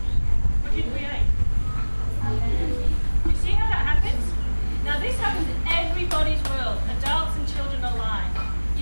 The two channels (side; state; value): both; inverted; correlation -1.00